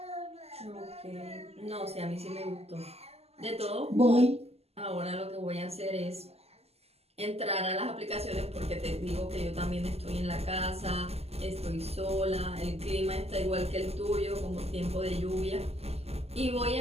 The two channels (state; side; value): late; left; 0.29 ms